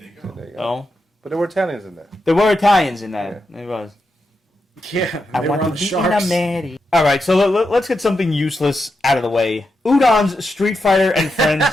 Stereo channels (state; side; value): normal; both; correlation 0.86